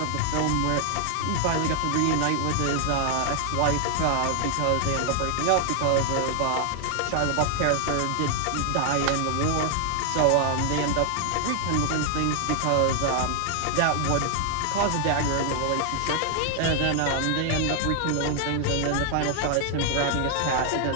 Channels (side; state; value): both; different; correlation 0.00